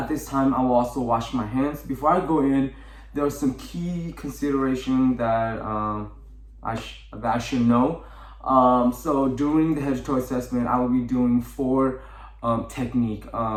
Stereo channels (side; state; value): both; identical; correlation 1.00